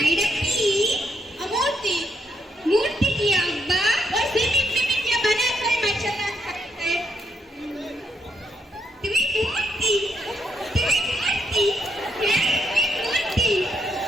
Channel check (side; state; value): both; normal; correlation 0.76